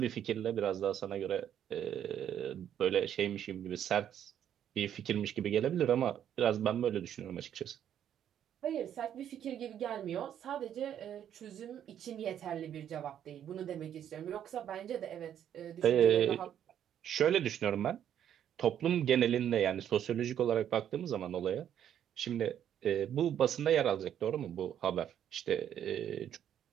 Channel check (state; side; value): quieter; left; 9.9 dB